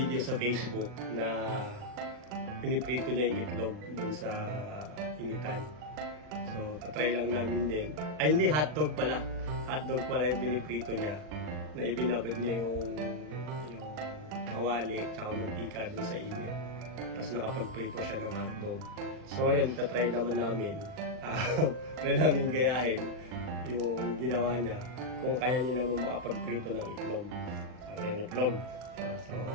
sa Facebook na piniprito niya yung itlog dun sa initan. So, patry lang namin din. Ay, hindi, hotdog pala. Hotdog pala yung piniprito niya. Na ibinabad niya yung kawali tsaka mantika dun sa init. Tapos nakapagprito siya ng hotdog. So, ayun, tatry naman namin. Try namin gayahin yung ginawa niya kung kaya niya naman makapagprito ng itlog. So, yung itlog. So,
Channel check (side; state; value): left; late; 39 ms